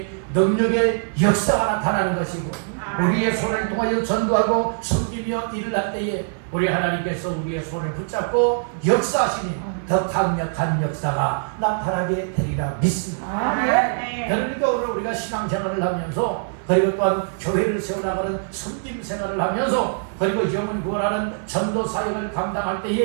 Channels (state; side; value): silent; left; digital silence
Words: 능력의 역사가 나타나는 것이고 우리의 손을 통하여 전도하고 섬기며 일을 할 때에 우리 하나님께서 우리의 손을 붙잡고 역사하시니 더 강력한 역사가 나타나게 되리라 믿습니다. 그러니까 오늘 우리가 신앙생활을 하면서 그리고 또한 교회를 세워나가는 섬김 생활을 하면서 그리고 영혼 구원하는 전도 사역을 감당할